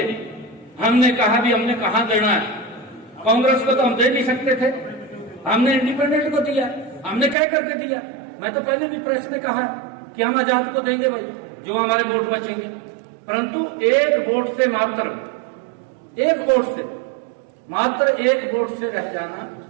हमने कहा भी हमने कहां देना है। कांग्रेस को तो हम दे नहीं सकते थे, हमने इंडिपेंडेंट को दिया। हमने कह करके दिया। मैं तो पहले भी प्रेस में कहा कि हम आजाद को देंगे भाई, जो हमारे वोट बचेंगे। परंतु एक वोट से मात्र एक वोट से रह जाना,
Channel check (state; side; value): drops out; left; at 7.4 s